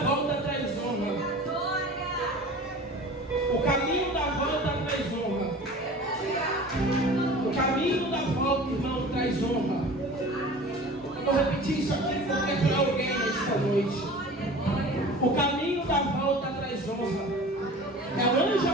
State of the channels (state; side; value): normal; both; correlation 0.40